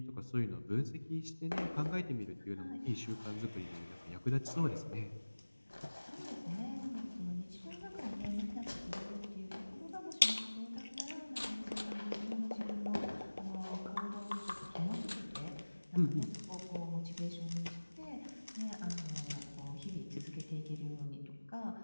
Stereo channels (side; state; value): both; inverted; correlation -1.00